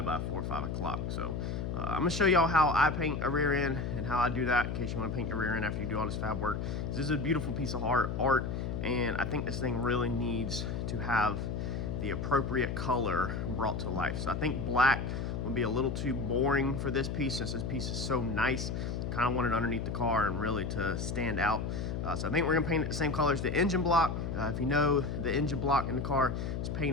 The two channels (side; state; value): left; noise; hum, 3 dB below the sound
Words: 4 or 5 o'clock. So I'm gonna show y'all how I paint a rear end and how I do that, in case you want to paint your rear end after you do all this fab work. This is a beautiful piece of art, and I think this thing really needs to have the appropriate color brought to life. So I think black would be a little too boring for this piece, since this piece is so nice. Kind of want it underneath the car and really to stand out. So I think we're gonna paint it the same color as the engine block. If you know, the engine block in the car is